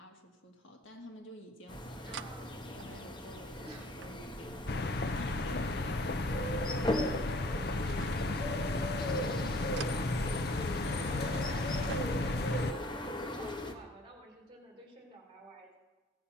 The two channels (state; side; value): normal; both; correlation 0.56